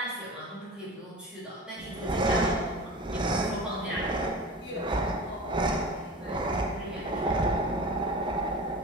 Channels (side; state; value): both; normal; correlation 0.33